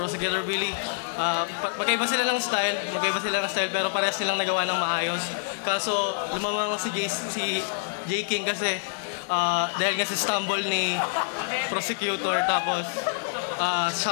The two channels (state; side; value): silent; right; 57 dB below the other